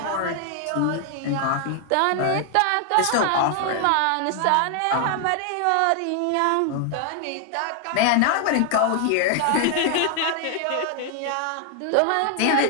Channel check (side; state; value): both; different; correlation 0.00